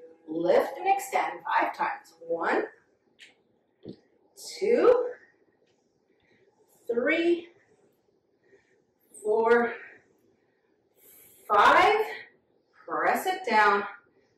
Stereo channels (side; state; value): both; identical; correlation 1.00